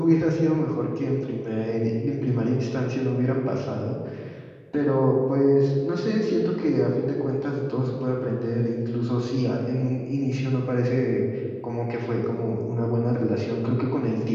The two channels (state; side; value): identical; both; correlation 1.00